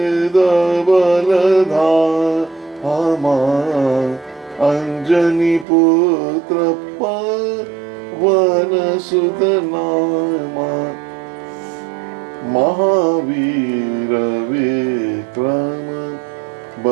बल धामा, अंजनी पुत्र पवन सुत नामा। महावीर विक्रम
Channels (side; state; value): left; drops out; at 5.7 s